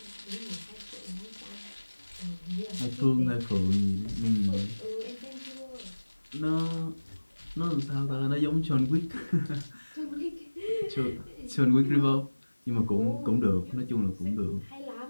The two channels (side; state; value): both; inverted; correlation -1.00